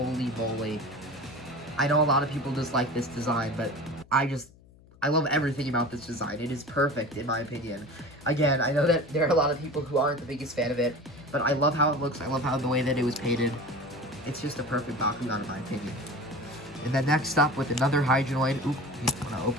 moly. I know a lot of people dislike this design, but I love everything about this design. It is perfect, in my opinion. Again, I know that there are a lot of people who aren't the biggest fan of it, but I love how it looks. I love how the way that it was painted. It's just a perfect Bakugan, in my opinion. And then next up with another Hydroid. Oop, I want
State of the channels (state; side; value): noise; left; hum, 25 dB below the sound